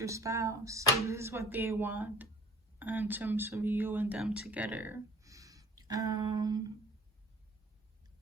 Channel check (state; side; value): normal; both; correlation 0.47